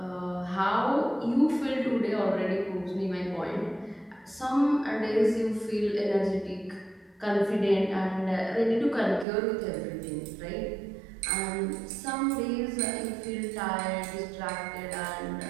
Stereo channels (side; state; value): left; drops out; at 9.2 s